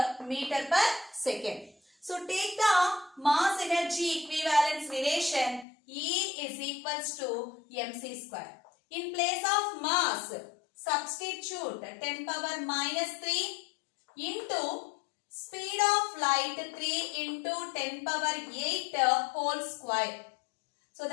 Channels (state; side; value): drops out; right; at 5.7 s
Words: meter per second. So take the mass energy equivalence relation. E is equals to mc square. In place of mass, substitute 10 power minus 3 into speed of light 3 into 10 power 8 whole square. So